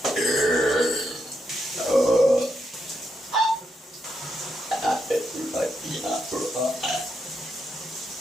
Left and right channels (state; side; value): normal; both; correlation 0.82